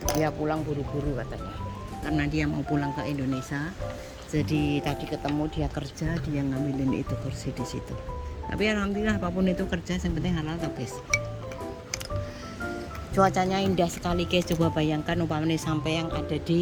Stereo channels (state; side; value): identical; both; correlation 1.00